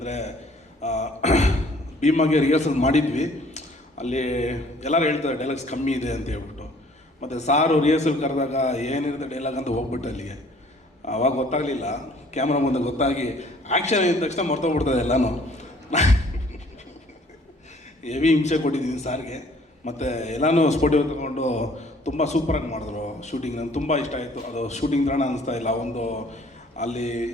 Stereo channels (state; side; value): normal; both; correlation 0.57